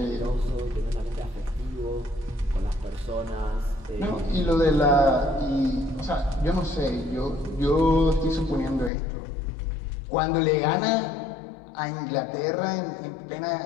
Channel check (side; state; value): right; drops out; at 8.9 s